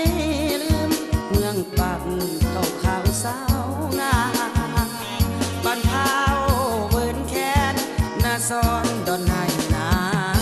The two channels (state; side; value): identical; both; correlation 1.00